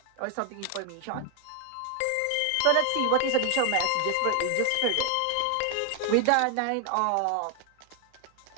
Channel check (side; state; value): both; different; correlation 0.00